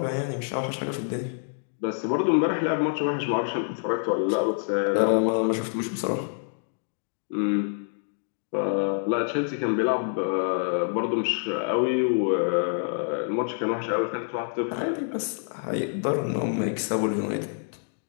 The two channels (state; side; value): silent; right; digital silence